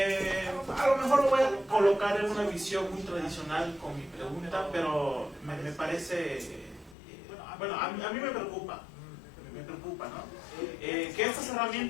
A lo mejor lo voy a colocar en una visión muy tradicional con mi pregunta, pero me parece, bueno, a mí me preocupa, ¿no? Que estas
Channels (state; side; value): drops out; right; at 7.0 s